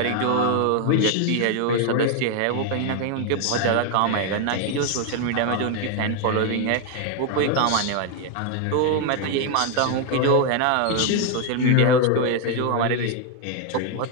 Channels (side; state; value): both; different; correlation 0.01